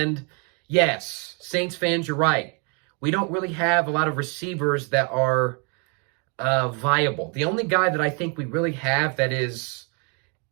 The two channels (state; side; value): quieter; left; 35.8 dB